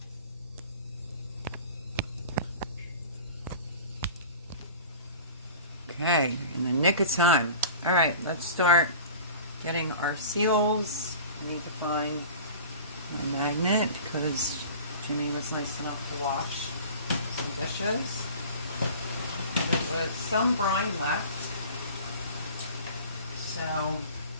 Okay, in the nick of time. All right, let's start getting our seals. I need to find my magnet because Jimmy was nice enough to wash some dishes. There was some brine left, so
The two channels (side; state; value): both; inverted; correlation -0.40